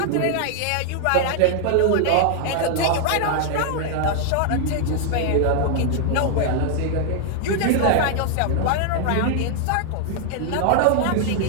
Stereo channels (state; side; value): different; both; correlation 0.00